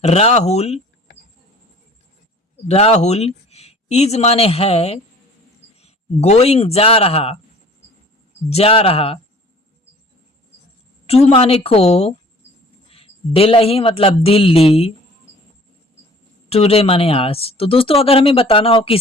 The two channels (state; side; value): normal; both; correlation 0.49